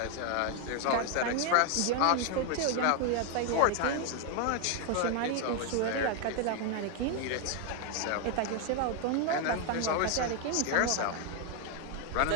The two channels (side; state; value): both; different; correlation 0.01